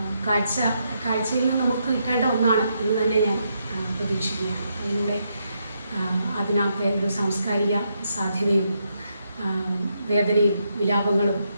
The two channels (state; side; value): inverted; both; correlation -0.79